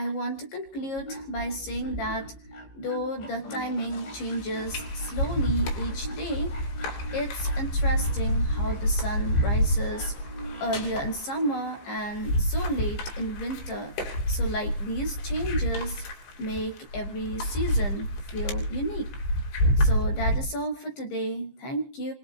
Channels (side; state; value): right; late; 15 ms